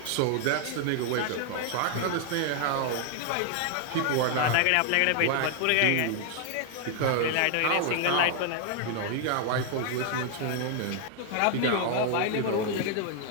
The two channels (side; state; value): both; different; correlation 0.00